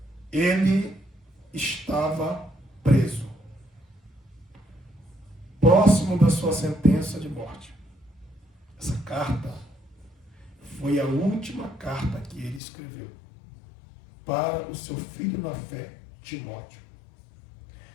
ele estava preso, próximo da sua sentença de morte. Essa carta foi a última carta que ele escreveu para o seu filho na fé, Timóteo.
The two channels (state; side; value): drops out; right; at 12.6 s